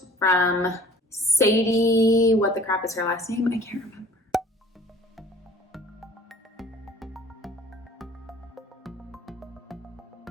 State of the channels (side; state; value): both; normal; correlation 0.50